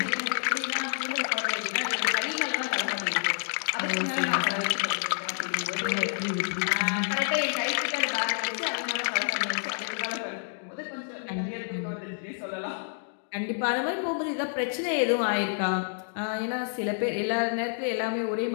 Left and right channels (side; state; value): right; silent; digital silence